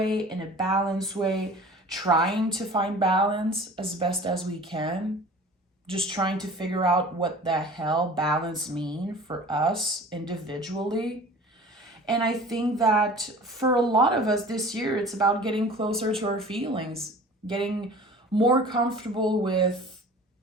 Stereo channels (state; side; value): normal; both; correlation 0.43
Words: in a balanced way, trying to find balance as best as we can, just trying to figure out what the hell balance mean for us individually. And I think that for a lot of us this year, it's about getting closer to our feelings, getting more comfortable with